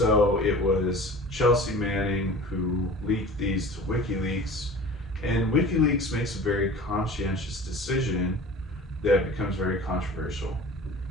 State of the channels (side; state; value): both; normal; correlation 0.40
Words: it was Chelsea Manning who leaked these to WikiLeaks, and WikiLeaks makes a very conscientious decision that becomes very controversial.